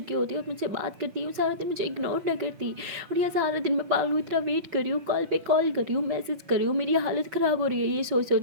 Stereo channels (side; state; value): left; late; 5.3 ms